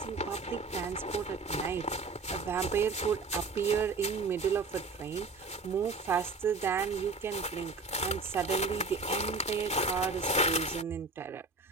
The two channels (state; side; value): quieter; left; 3.9 dB